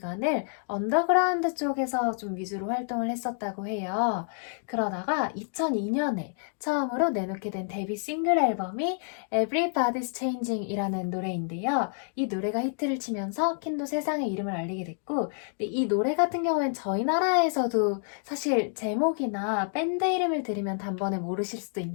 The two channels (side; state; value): right; silent; 59 dB below the other